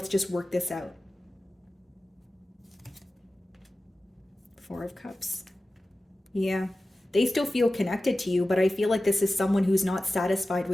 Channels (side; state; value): both; normal; correlation 0.95